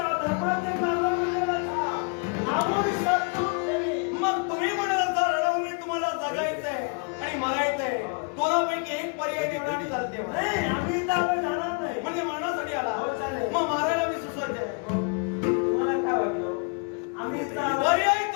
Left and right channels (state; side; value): quieter; right; 37.0 dB